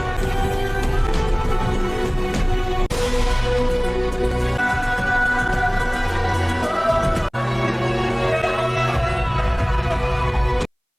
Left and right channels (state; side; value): identical; both; correlation 1.00